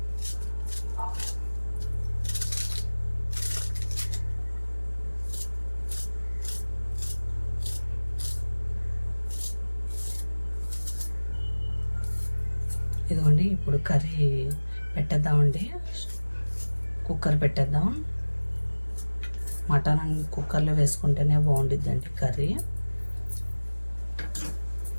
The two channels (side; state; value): both; inverted; correlation -1.00